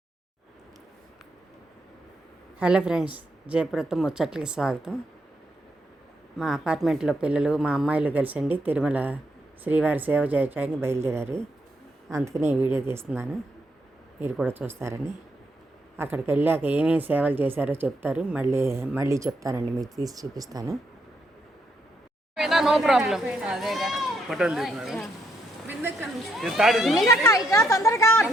Hello friends, జయపురతో ముచ్చట్లకి స్వాగతం. మా అపార్ట్మెంట్లో పిల్లలు మా అమ్మాయిలు కలిసండి తిరుమల శ్రీవారి సేవ చేయడానికి బయలుదేరారు. అందుకనే ఈ వీడియో తీస్తున్నాను, మీరు కూడా చూస్తారని. అక్కడికి వెళ్ళాక ఏమేమి సేవలు చేశారో చెప్తారు, మళ్ళీ చెప్తానండి, మీకు తీసి చూపిస్తాను. No problem. తొందరగా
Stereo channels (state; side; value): normal; both; correlation 0.77